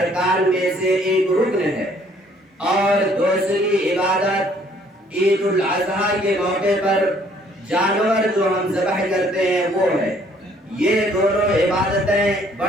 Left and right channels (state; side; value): normal; both; correlation 0.62